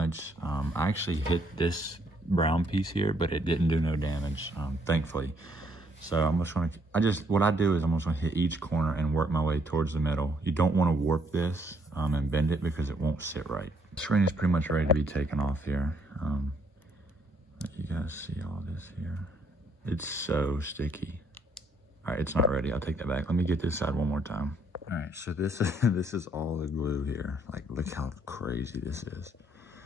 I actually hit this brown piece here, but it didn't do no damage, thankfully. So I'm just going to, what I do is I'm just going to hit each corner and work my way towards the middle. You don't want to warp this and bend it because it won't sit right. The screen is pretty much ready to be taken off here. Let you guys see all this here. It's so sticky. All right, it's not ready. I'll take that back. Let me get this side one more time. All right, so this is all the glue here. Like, look how crazy this is.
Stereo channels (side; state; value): both; normal; correlation 0.68